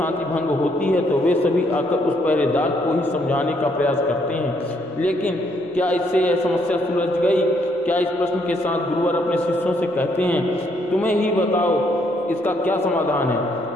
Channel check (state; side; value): normal; both; correlation 0.71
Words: भंग होती है, तो वे सभी आकर उस पहरेदार को ही समझाने का प्रयास करते हैं। लेकिन क्या इससे यह समस्या सुलझ गई? क्या इस प्रश्न के साथ गुरुवर अपने शिष्यों से कहते हैं, तुम्हें ही बताओ इसका क्या समाधान है?